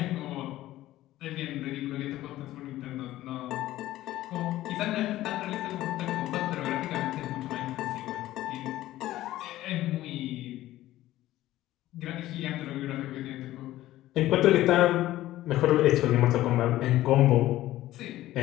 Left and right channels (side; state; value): right; quieter; 15.2 dB